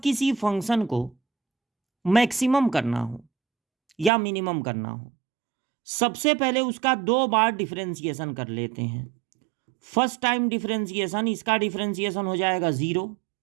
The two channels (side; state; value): left; drops out; at 4.1 s